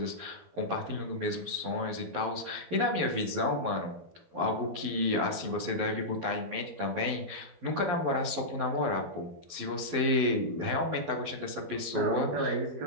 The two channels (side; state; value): left; late; 11 ms